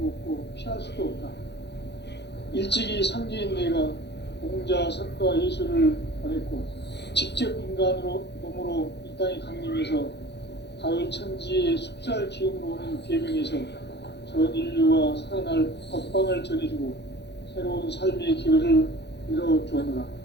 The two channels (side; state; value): right; late; 0.50 ms